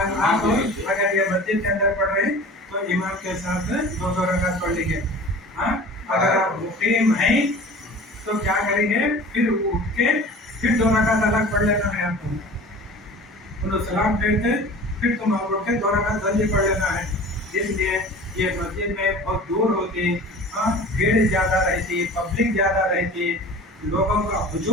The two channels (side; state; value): both; normal; correlation 0.41